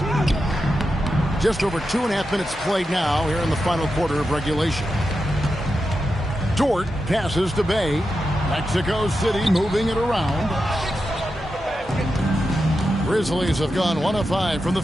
Just over 2.5 minutes played now here in the final quarter of regulation. Dort passes to Bay. Mexico City moving it around. Grizzlies have gone 1 of 5 from the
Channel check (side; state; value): both; normal; correlation 0.89